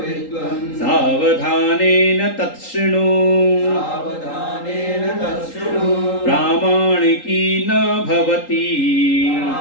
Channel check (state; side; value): late; right; 3.8 ms